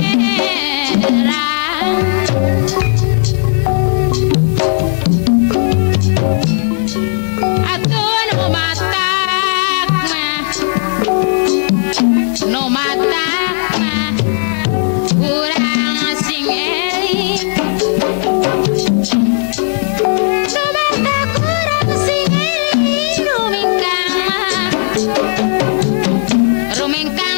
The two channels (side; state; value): right; silent; digital silence